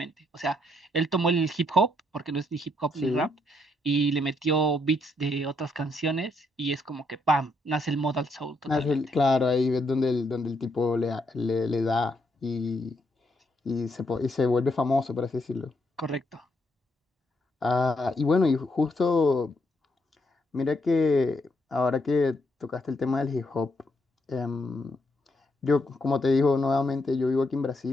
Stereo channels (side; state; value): both; normal; correlation 0.76